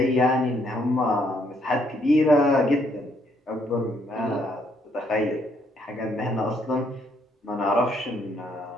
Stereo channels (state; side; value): normal; both; correlation 0.70